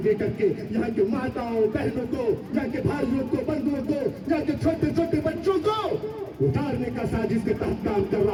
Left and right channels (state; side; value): identical; both; correlation 1.00